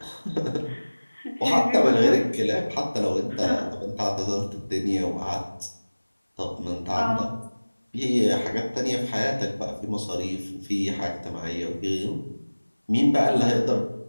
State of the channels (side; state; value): both; inverted; correlation -1.00